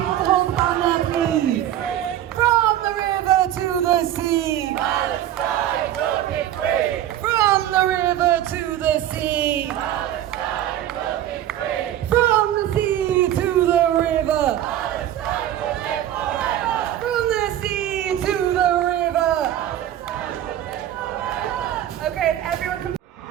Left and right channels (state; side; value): quieter; left; 12.0 dB